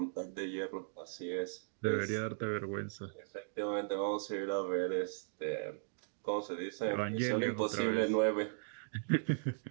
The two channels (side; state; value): left; silent; digital silence